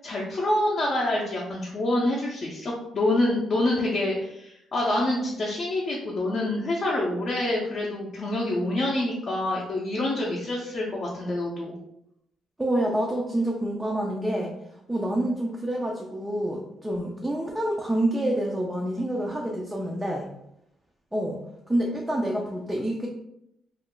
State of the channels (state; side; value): normal; both; correlation 0.82